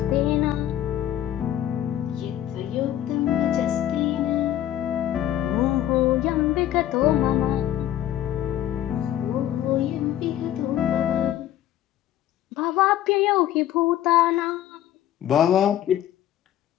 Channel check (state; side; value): quieter; right; 12.0 dB